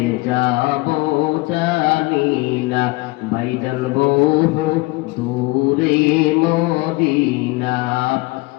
যাব জানি না ভাইজান বহু দূরে মদিনা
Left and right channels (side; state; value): right; quieter; 22.8 dB